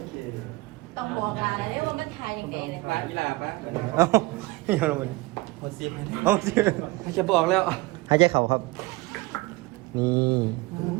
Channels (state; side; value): quieter; left; 21.7 dB